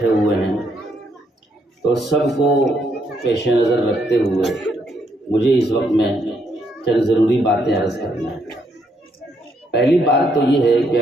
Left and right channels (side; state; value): both; normal; correlation 0.74